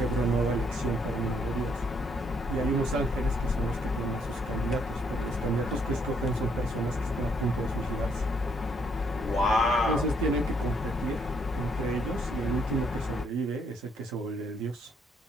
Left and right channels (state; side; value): normal; both; correlation 0.70